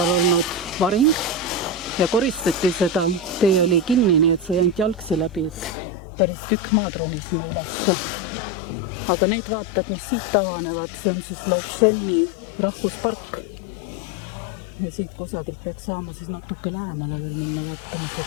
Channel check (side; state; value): right; drops out; at 5.8 s